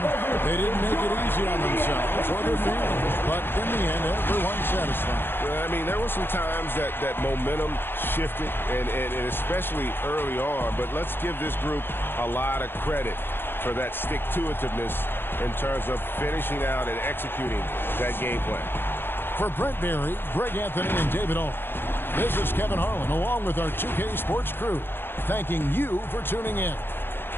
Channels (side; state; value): right; late; 0.10 ms